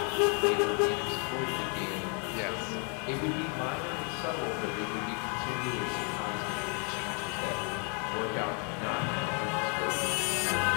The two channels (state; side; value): quieter; right; 37.7 dB